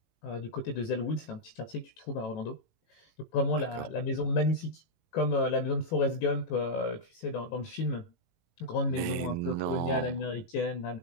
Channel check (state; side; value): late; right; 17 ms